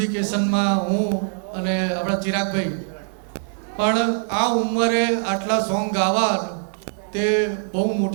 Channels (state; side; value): silent; left; 64 dB below the other